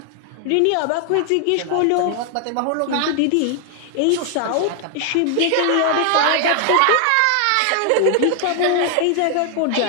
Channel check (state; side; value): different; both; correlation 0.00